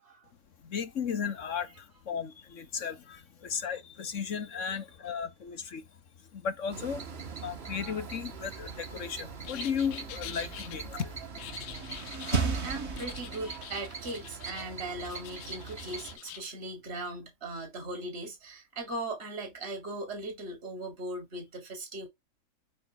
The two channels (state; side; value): late; right; 3.6 ms